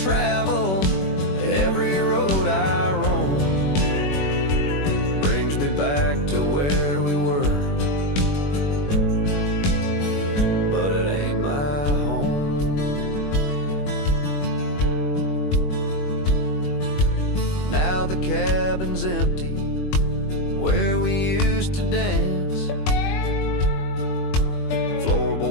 every road I roam, brings me back to where we were, but it ain't my home. Now the cabin's empty where we used to dance.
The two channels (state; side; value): late; right; 21 ms